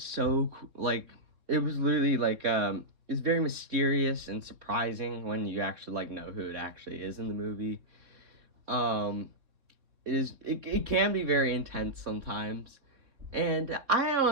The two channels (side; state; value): left; late; 3.8 ms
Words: so like, it was literally like it's very mysterious and surprising when you actually like know who it actually is in the movie. It can be very intense sometimes, And I